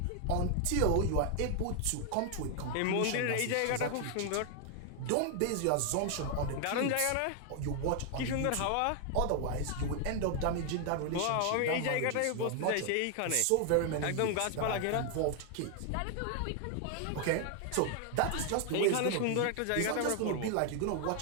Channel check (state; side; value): different; both; correlation 0.00